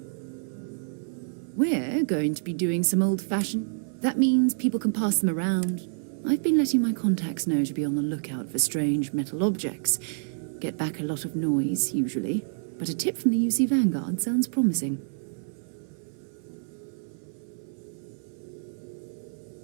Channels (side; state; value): left; silent; 59 dB below the other